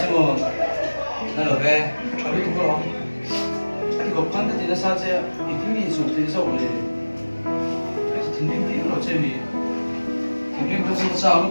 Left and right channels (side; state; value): both; inverted; correlation -1.00